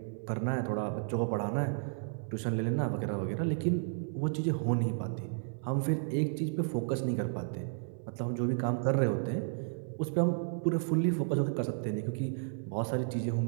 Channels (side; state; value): left; silent; 56 dB below the other